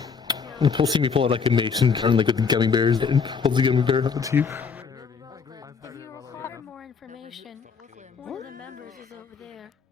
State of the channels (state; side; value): quieter; right; 5.7 dB